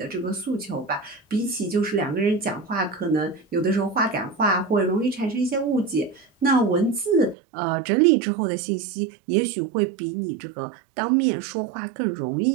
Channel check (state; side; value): drops out; left; at 7.4 s